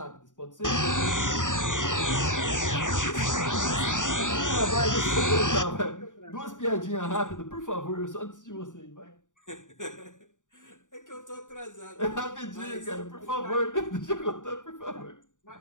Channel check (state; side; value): late; right; 0.87 ms